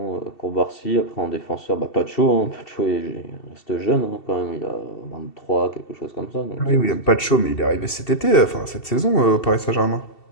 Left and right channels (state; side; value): late; right; 2.7 ms